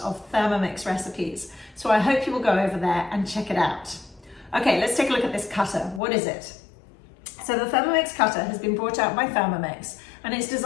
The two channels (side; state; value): right; drops out; at 6.0 s